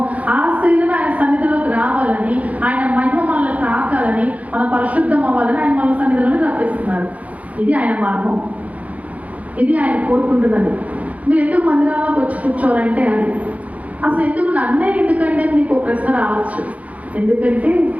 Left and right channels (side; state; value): left; late; 0.069 ms